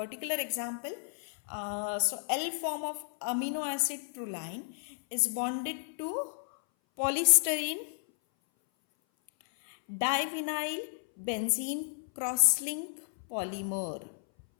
example. So L form of amino acid proline is bonded to polystyrene divinyl benzene crosslink polymer,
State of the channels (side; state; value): right; silent; 56 dB below the other